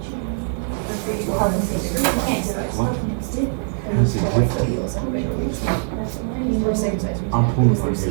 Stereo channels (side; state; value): left; silent; digital silence